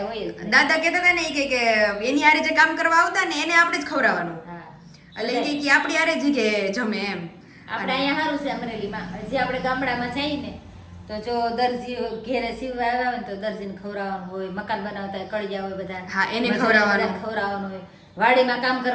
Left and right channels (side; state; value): both; identical; correlation 1.00